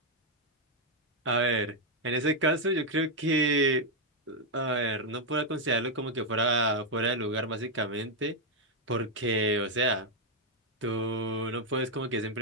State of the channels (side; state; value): both; normal; correlation 0.00